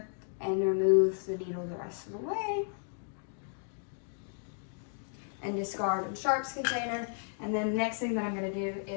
and remove the needle the rest of the way, and discard in sharps container. And then the next thing that I'm going to do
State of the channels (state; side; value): silent; right; digital silence